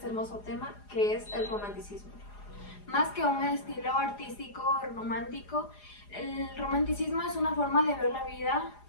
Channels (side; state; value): right; late; 4.9 ms